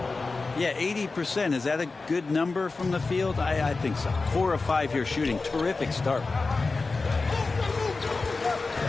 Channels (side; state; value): right; quieter; 3.8 dB